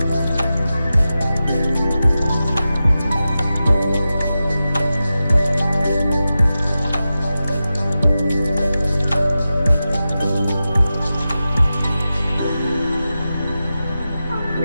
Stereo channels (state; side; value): inverted; both; correlation -0.93